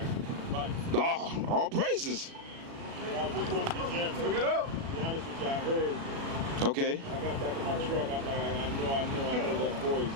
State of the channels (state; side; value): late; left; 36 ms